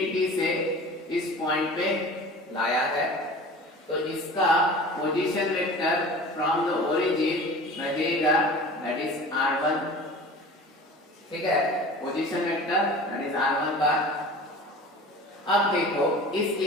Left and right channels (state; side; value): normal; both; correlation 0.39